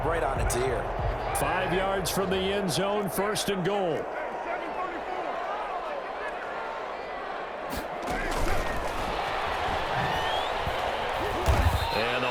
right on its ear. 5 yards from the end zone, first and goal.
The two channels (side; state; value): both; identical; correlation 1.00